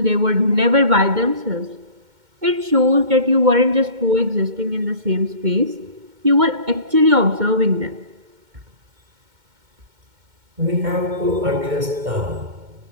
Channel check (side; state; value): left; late; 2.2 ms